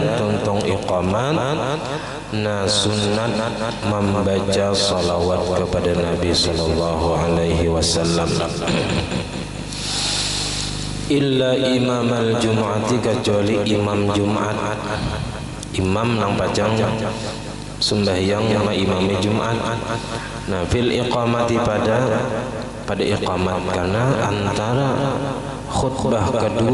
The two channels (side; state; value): both; identical; correlation 1.00